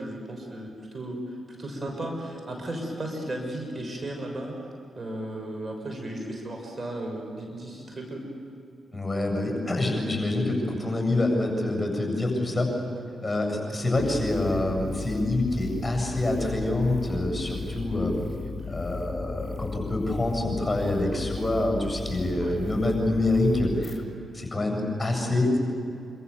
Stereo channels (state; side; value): normal; both; correlation 0.89